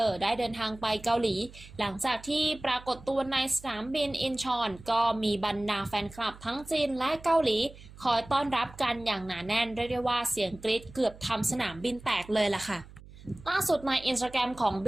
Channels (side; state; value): right; noise; hum, 19 dB below the sound